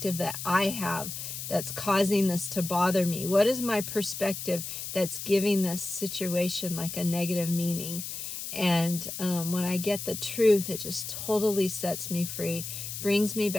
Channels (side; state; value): left; noise; hiss, 7 dB below the sound